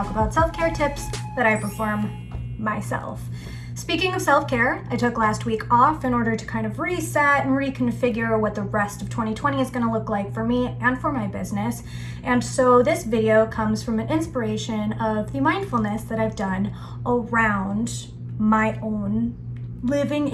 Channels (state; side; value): identical; both; correlation 1.00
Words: about self-care tips that I perform myself. Speaking of self-care, I took last week off in order to kind of reset and reconfigure what the rest of 2020 is going to look like for me and for my business. And so this video comes from an inspiration of the mindfulness that I've done around my own living